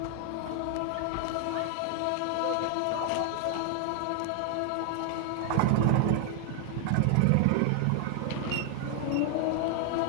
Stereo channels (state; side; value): different; both; correlation 0.00